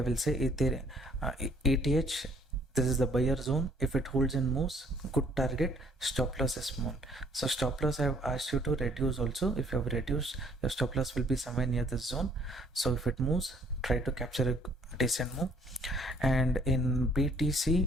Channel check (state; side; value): normal; both; correlation 0.62